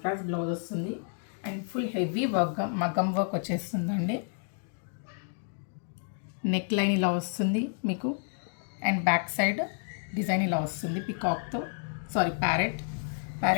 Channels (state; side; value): silent; right; 58 dB below the other